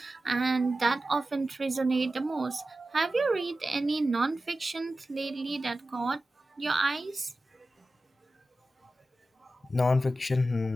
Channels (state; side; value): normal; both; correlation 0.94